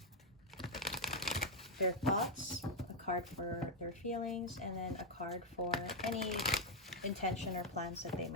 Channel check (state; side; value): normal; both; correlation 0.00